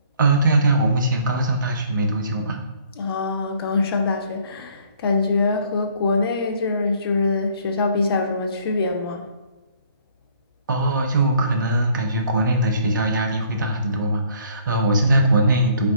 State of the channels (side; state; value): both; inverted; correlation -0.60